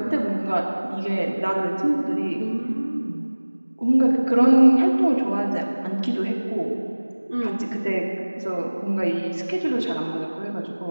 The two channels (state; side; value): inverted; both; correlation -1.00